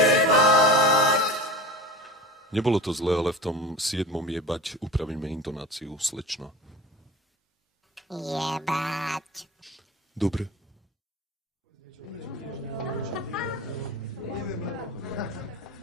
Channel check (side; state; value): both; normal; correlation 0.34